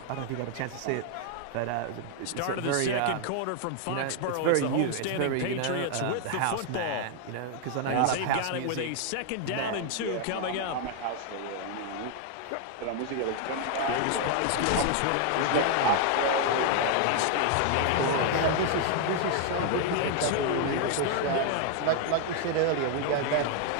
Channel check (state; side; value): different; both; correlation 0.00